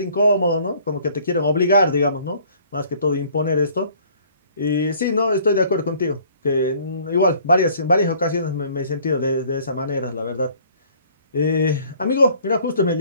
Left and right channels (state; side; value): inverted; both; correlation -0.56